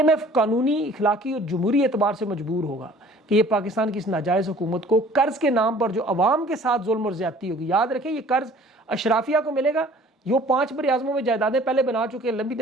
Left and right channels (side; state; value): both; normal; correlation 0.51